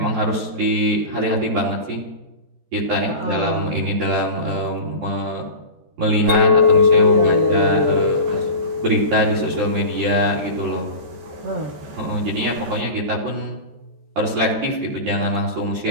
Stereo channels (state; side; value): late; left; 14 ms